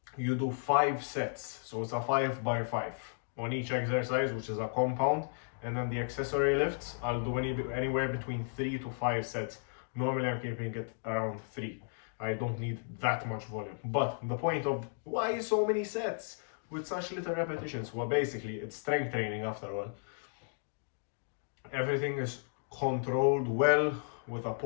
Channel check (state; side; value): silent; right; digital silence